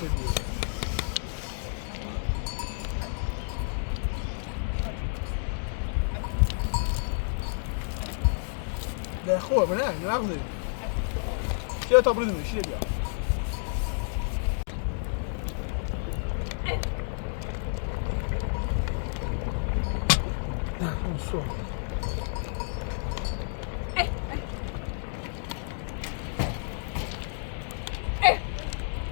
ده خوبه نه نوام نیم چه تا بریم میشه بیا نه اون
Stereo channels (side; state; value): right; silent; digital silence